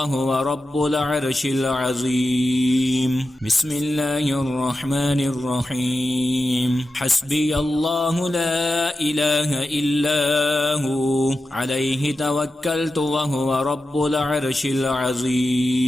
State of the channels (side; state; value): both; normal; correlation 0.91